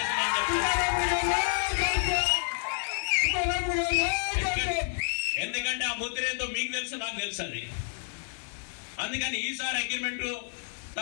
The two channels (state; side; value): silent; right; digital silence